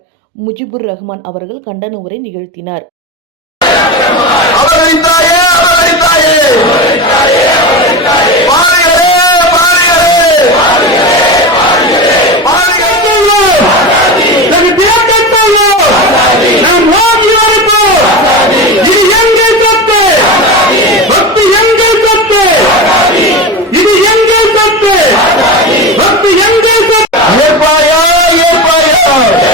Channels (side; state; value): both; normal; correlation 0.23